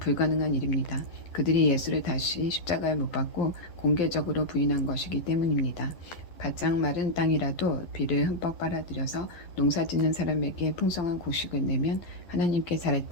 일입니다. 그들이 예수를 다시 십자가에 못 박고 공개적으로 부인한 것이기 때문입니다. 바짝 마른 땅이라도 비를 흠뻑 빨아들여서 농사짓는 사람에게 풍성한 곡식을 내면 하나님께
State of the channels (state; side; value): late; right; 11 ms